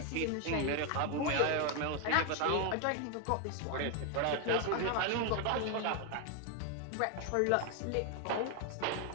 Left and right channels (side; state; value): both; different; correlation 0.01